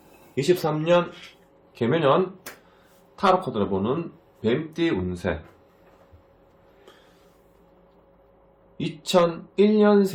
개묘년 타로 카드를 보는 뱀띠 운세.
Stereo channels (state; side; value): identical; both; correlation 1.00